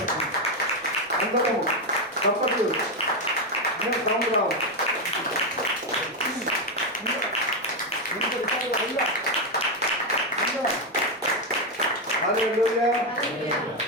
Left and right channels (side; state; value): both; normal; correlation 0.06